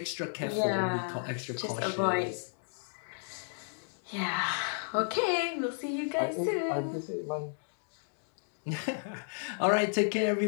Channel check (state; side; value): silent; right; digital silence